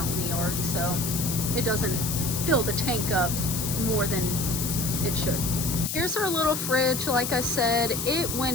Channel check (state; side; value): noise; left; hiss, 3 dB below the sound